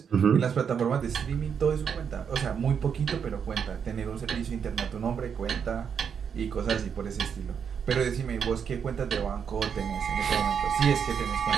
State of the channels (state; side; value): quieter; left; 7.2 dB